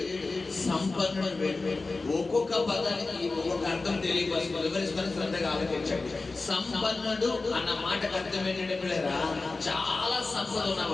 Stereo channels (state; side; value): quieter; right; 3.6 dB